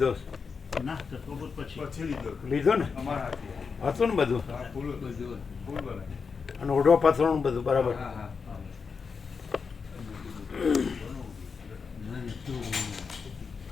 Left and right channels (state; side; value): quieter; right; 5.4 dB